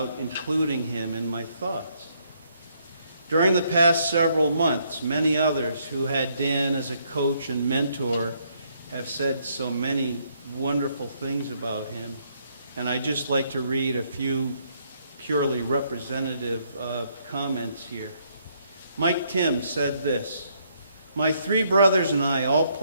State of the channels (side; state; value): both; inverted; correlation -0.71